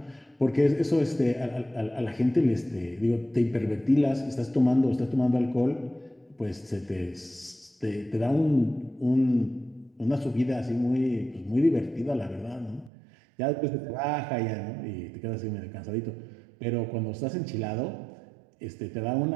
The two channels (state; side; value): drops out; left; at 12.9 s